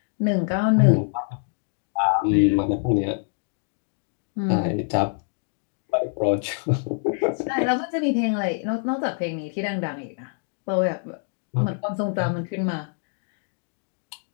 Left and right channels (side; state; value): right; silent; 62 dB below the other